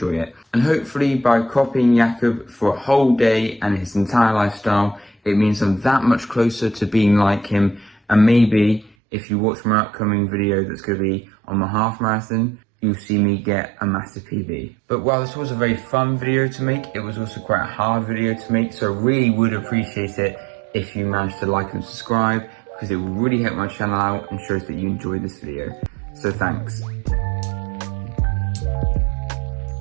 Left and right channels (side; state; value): left; drops out; at 9.0 s